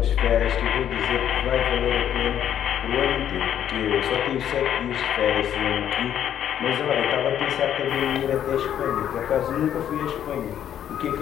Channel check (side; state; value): right; quieter; 10.1 dB